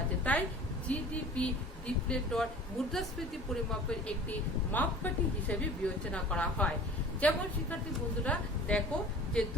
তাই জিডিপি ডিপ্লেটর মুদ্রাস্ফীতি পরিমাপের একটি মাপকাঠি হিসেবে বিবেচনা করা হয়। যেমন শিক্ষার্থী বন্ধুরা দেখো যে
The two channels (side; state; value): both; normal; correlation 0.42